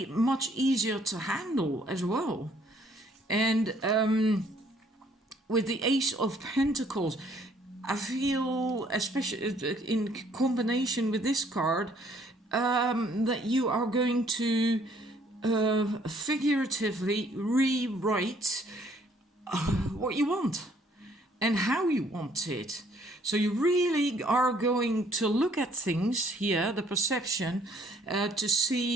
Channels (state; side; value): normal; both; correlation 0.63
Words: much easier to handle as well. And with the Ace of Pentacles, I feel, especially in combination with this card, that you are going to figuratively rewrite what you want and how you want it. So you really are going to look at things here, the perception, to